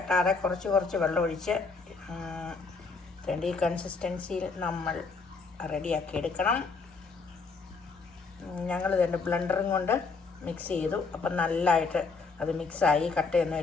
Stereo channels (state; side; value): quieter; right; 4.4 dB